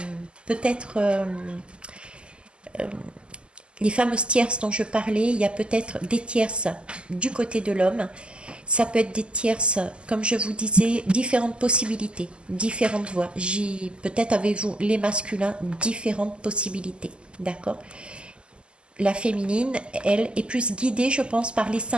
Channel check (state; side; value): late; left; 0.051 ms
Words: peut-être les fameuses tierces dont je parlais, il y a peut-être des tierces du côté de l'homme. Ça peut être des tierces, comme je vous disais, différentes possibilités, différentes voies. Peut-être avez-vous les masculins, différentes possibilités. D'accord? La féminine, elle est plus guidée, je pense, par les